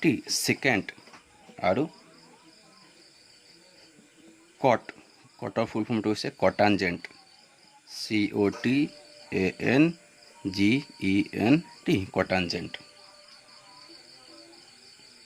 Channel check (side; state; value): both; identical; correlation 1.00